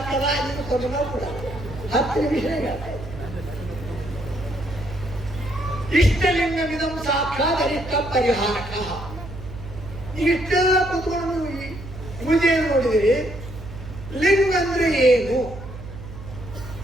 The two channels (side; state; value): right; noise; hum, 13 dB below the sound